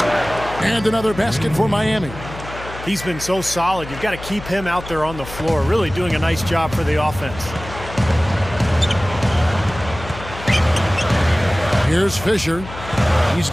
And another basket for Miami. He's been so solid. You've got to keep him out there on the floor, really doing a nice job for the offense. Here's Fisher. He's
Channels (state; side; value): noise; left; hum, 13 dB below the sound